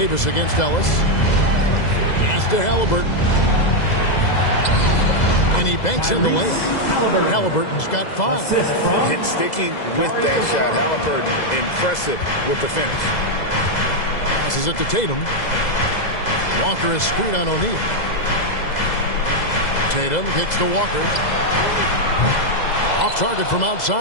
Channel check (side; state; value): right; late; 2.0 ms